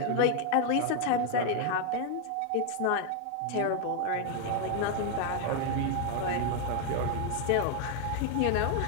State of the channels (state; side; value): different; both; correlation 0.00